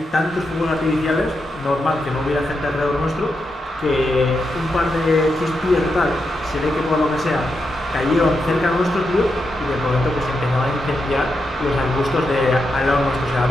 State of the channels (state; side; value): normal; both; correlation 0.85